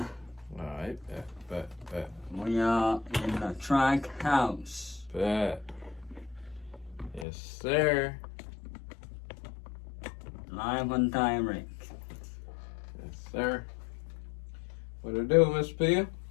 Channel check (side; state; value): right; drops out; at 7.2 s